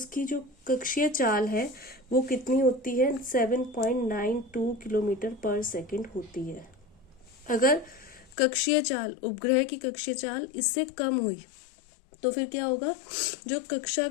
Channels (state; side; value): drops out; right; at 8.3 s